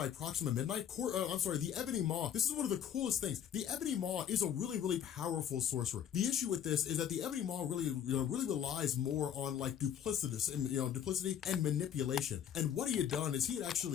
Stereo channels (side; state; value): right; quieter; 9.2 dB